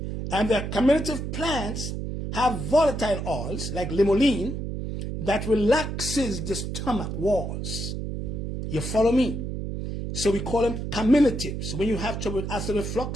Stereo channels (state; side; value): noise; right; hum, 5 dB below the sound